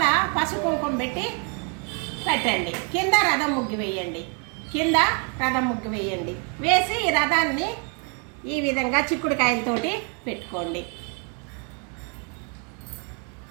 పసుపు కుంకుమ పెట్టి పెట్టండి. కింద రథం ముగ్గు వేయండి. వేసి ఈ రథాన్ని ఈ విధంగా చిక్కుడుకాయలతోటి పెట్టుకోండి.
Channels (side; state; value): left; quieter; 38.3 dB